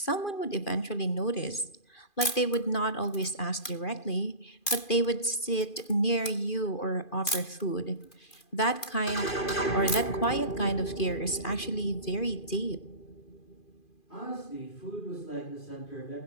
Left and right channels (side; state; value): right; late; 2.4 ms